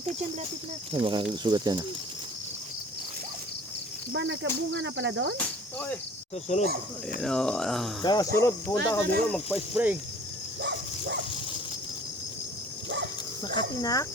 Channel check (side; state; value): both; normal; correlation 0.48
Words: dyan, lapit na. Ay, makasugat yan. Ba, nagkabunga na pala doon? Okay. Susunod. Ayan o. Sa sunod, punta ka dito, magpa-spray. Makatinak.